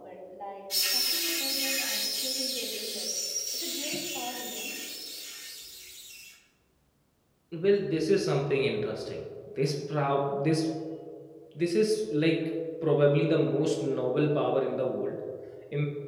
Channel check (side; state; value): both; identical; correlation 1.00